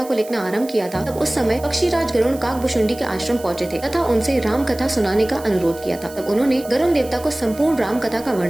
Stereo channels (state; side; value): noise; right; hiss, 18 dB below the sound